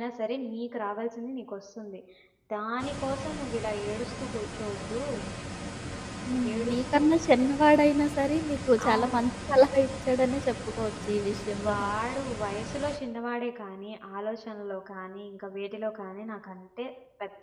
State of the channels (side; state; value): both; identical; correlation 1.00